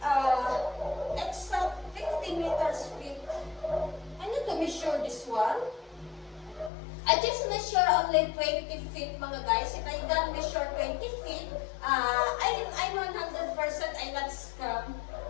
it's a 50 meters feet. I need to measure this one. I just measure only 20 feet, mga guys. If I don't measure 20 feet, I'm 100% I'm not scam.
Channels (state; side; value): drops out; right; at 6.7 s